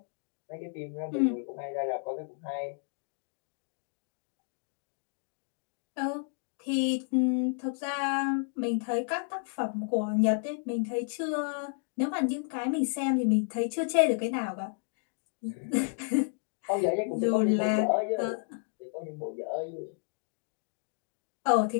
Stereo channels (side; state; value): right; silent; 57 dB below the other